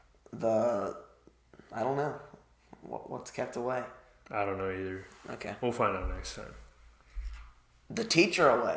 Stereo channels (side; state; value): both; identical; correlation 1.00